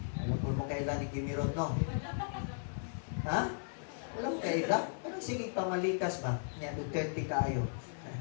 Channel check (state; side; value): silent; right; digital silence